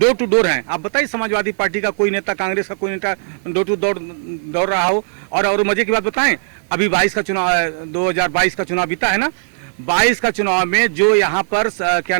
टू डोर हैं। आप बताइए, समाजवादी पार्टी का कोई नेता, कांग्रेस का कोई नेता डोर टू डोर दौड़ रहा हो? और मजे की बात बताएं, अभी 2022 का चुनाव बीता है ना, 22 का चुनाव में जो यहाँ पर क्या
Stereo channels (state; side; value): silent; left; 65 dB below the other